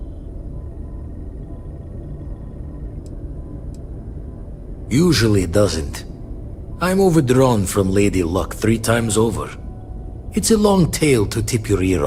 Usually it doesn't. I'm overdrawn from Lady Luck 3 times over. It's a long tale to tip your ear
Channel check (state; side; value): identical; both; correlation 1.00